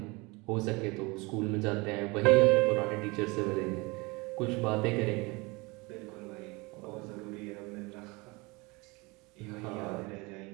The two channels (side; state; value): left; quieter; 25.6 dB